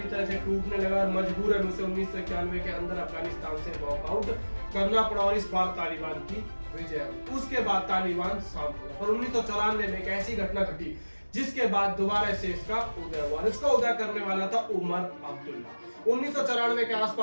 तरह से टूटने लगा और मजबूरन उसे 1991 के अंदर अफगानिस्तान से वॉकआउट करना पड़ा और इस बार तालिबान की विजय हुई। उसके बाद तालिबान शांत हुआ, पर 1994 में एक ऐसी घटना घटी जिसके बाद दोबारा से इसका उदय हुआ। इसका उदय करने वाला था उमर अब्दुल्ला। 1994 के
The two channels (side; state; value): both; inverted; correlation -1.00